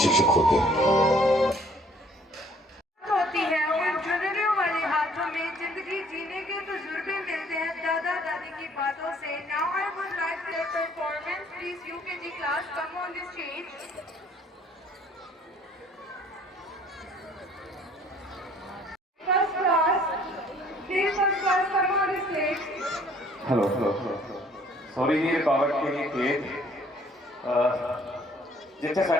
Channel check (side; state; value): both; normal; correlation 0.58